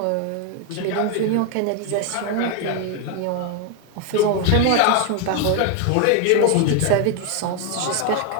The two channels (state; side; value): different; both; correlation 0.01